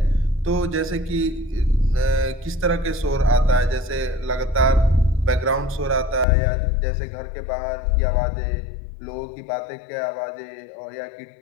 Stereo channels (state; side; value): drops out; right; at 6.2 s